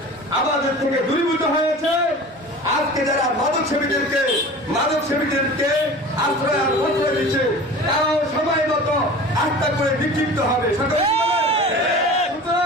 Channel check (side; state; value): both; normal; correlation 0.38